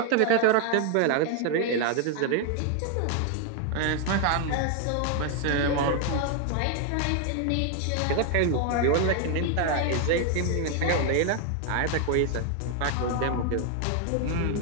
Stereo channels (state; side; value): different; both; correlation 0.00